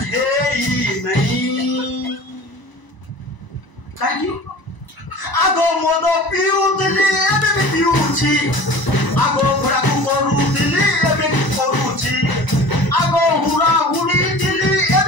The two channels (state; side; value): late; right; 1.0 ms